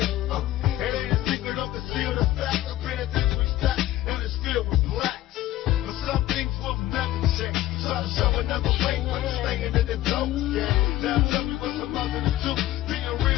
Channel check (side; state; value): right; quieter; 14.8 dB